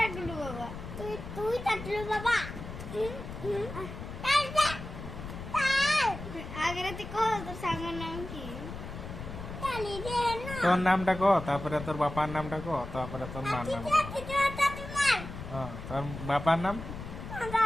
তুই টাটুল বাবা আগে তুই কহ তোর সাঙ্গর নাম কি? তোর নামটা কো, তারপরে তোর বাবার নামটা কো, তারপরে তোর মার নাম। হ্যাঁ, তোর বাবার নাম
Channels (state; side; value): noise; left; rumble, 10 dB below the sound